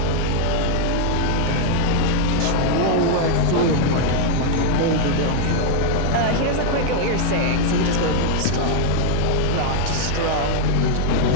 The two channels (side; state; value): both; different; correlation 0.00